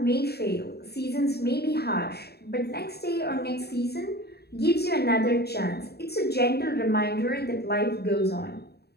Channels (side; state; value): right; late; 0.47 ms